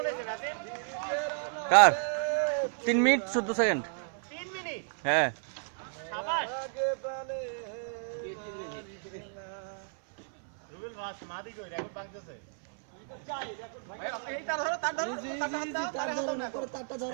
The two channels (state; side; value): silent; left; 56 dB below the other